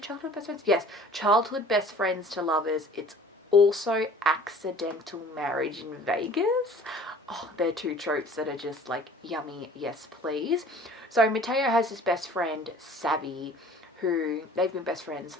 childhood best friends? Yes, childhood best friends to lovers. It's also accidental marriage in Vegas. Oh, they're 2 tropes that are just like yummy, yes please. So Matteo has his best friend, Savvy, who they've been best friends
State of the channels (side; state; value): both; normal; correlation 0.49